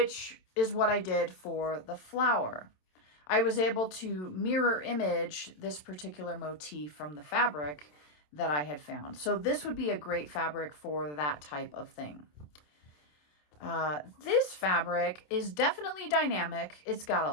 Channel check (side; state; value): right; late; 27 ms